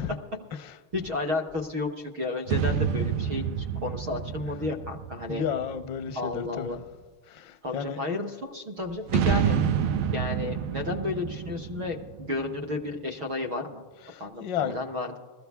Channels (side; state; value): left; late; 6.3 ms